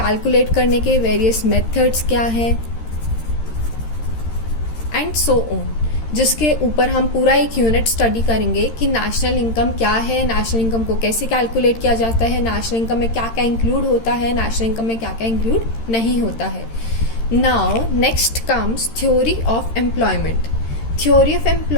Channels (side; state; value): right; late; 13 ms